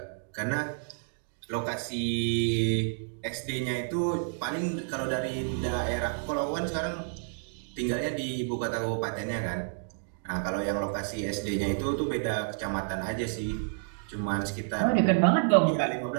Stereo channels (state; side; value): silent; left; digital silence